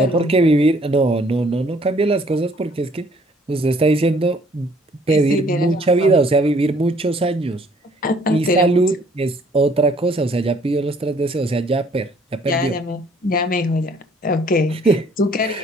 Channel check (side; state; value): both; normal; correlation 0.60